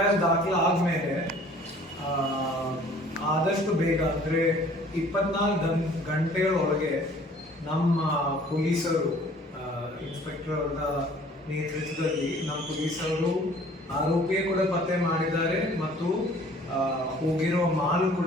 ದಾಖಲಾದ್ಮೇಲೆ ಆದಷ್ಟು ಬೇಗ ಅಂದರೆ 24 ಗಂಟೆಗಳ ಒಳಗೆ ನಮ್ಮ ಪೊಲೀಸರು, ಇನ್ಸ್ಪೆಕ್ಟರ್ ಅವರ ನೇತೃತ್ವದಲ್ಲಿ ನಮ್ಮ ಪೊಲೀಸರು ಆರೋಪಿಯೇ ಕೂಡ ಪತ್ತೆ ಮಾಡಿದ್ದಾರೆ ಮತ್ತು ಹೋಗಿರೋ ಮಾಲು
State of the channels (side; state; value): both; normal; correlation 0.53